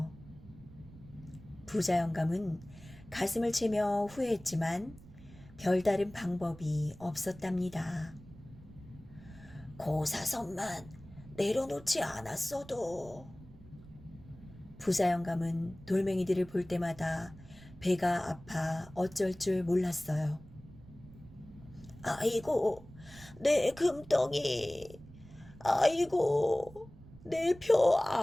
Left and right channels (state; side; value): noise; right; rumble, 19 dB below the sound